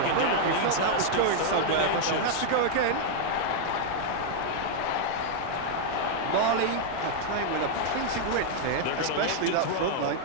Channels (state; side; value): different; both; correlation -0.01